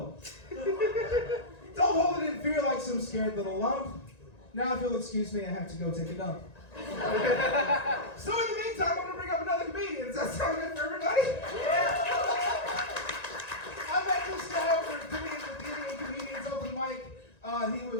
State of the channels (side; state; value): right; late; 1.9 ms